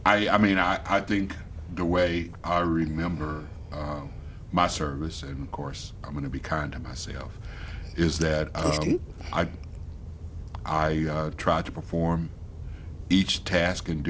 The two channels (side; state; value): both; identical; correlation 1.00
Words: I think the way I remember my service, and of course I'm going to be kind to myself, is that Please do. I tried to perform each task and